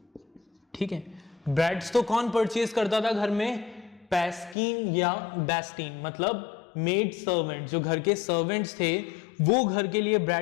ठीक है, ब्रेड्स तो कौन परचेज करता था घर में? पैस्किन या बेस्टीन, मतलब मेड सर्वेंट, जो घर के सर्वेंट्स थे वो घर के लिए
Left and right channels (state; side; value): drops out; right; at 4.5 s